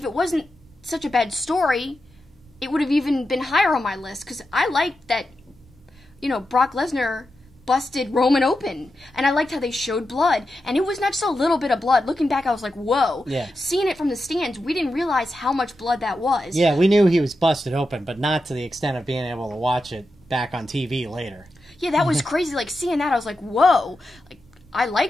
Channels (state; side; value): noise; right; rumble, 28 dB below the sound